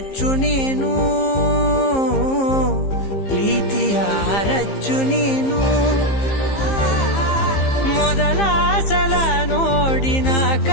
ನೀನು, ಪ್ರೀತಿಯ ರಚ್ಚು ನೀನು. ಮೊದಲ ಸಲ ನೋಡಿ ನಾ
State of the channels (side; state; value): right; late; 15 ms